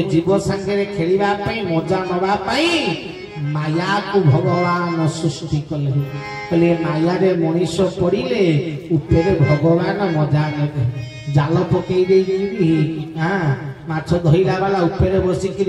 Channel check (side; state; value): both; identical; correlation 1.00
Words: जीव संगे खेलिबा पई मजा नवा पई माया को भगवान सृष्टि कले कहले माया रे मनीष पड़िले उपरे भगवान मजा नेबे जाल पकई देई हां माछ धइला वाला उपरे